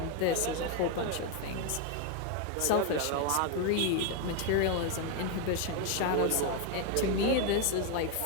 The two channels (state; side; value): different; both; correlation 0.01